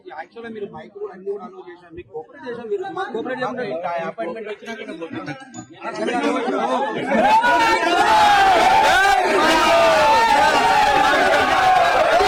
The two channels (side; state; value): both; identical; correlation 1.00